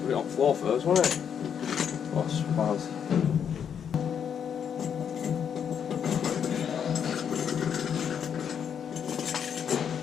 it on the floor first, wasn't it? Oh, spaz.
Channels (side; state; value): right; quieter; 7.9 dB